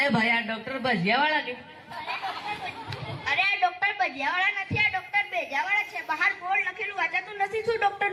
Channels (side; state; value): both; identical; correlation 1.00